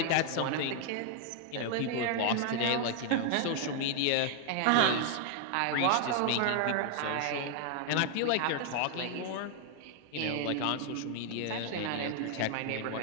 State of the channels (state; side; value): different; both; correlation 0.00